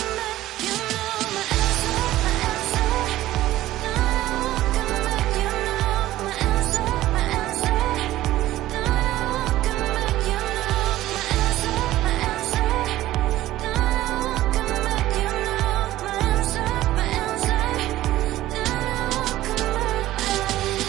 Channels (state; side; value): quieter; left; 15.1 dB